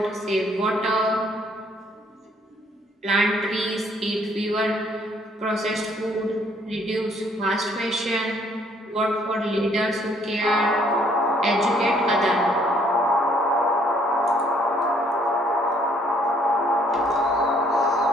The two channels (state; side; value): normal; both; correlation 0.64